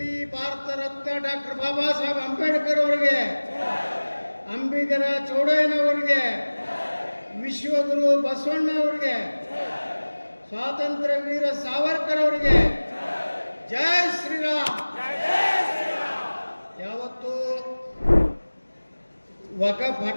ಭಾರತ ರತ್ನ ಡಾಕ್ಟರ್ ಬಾಬಾ ಸಾಹೇಬ್ ಅಂಬೇಡ್ಕರ್ ಅವರಿಗೆ, ಅಂಬಿಗರ ಚೌಡಯ್ಯನವರಿಗೆ, ವಿಶ್ವಗುರು ಬಸವಣ್ಣ ಅವರಿಗೆ, ಸ್ವಾತಂತ್ರ್ಯ ವೀರ ಸಾವರ್ಕರ್ ಅವರಿಗೆ ಜೈ ಶ್ರೀರಾಮ್. ಯಾವತ್ತು ವಕಫ್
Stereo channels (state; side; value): inverted; both; correlation -1.00